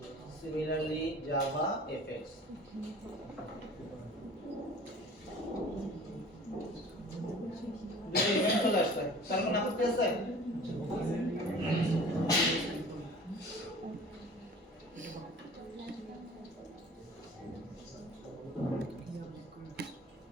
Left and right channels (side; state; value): both; normal; correlation 0.44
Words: similarly JavaFX দুটো ইভেন্ট চলে আসছে তার কোনো আপত্তি আছে